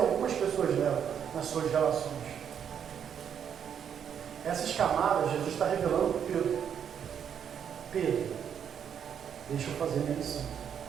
pessoas levam nas suas relações. Essas camadas Jesus está revelando para Pedro. Pedro, deixa eu fazer minha missão.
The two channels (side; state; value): left; quieter; 8.3 dB